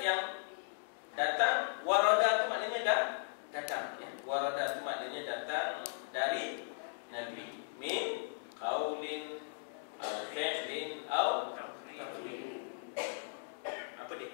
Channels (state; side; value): silent; right; digital silence